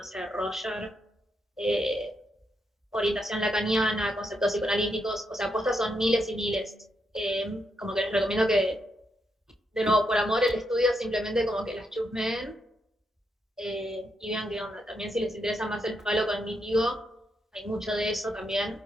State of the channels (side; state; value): both; normal; correlation 0.80